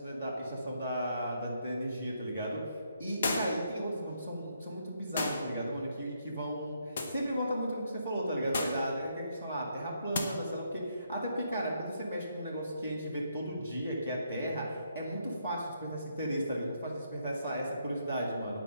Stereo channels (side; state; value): both; inverted; correlation -0.75